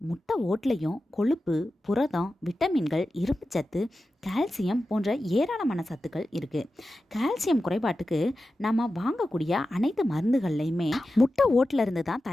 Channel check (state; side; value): normal; both; correlation 0.93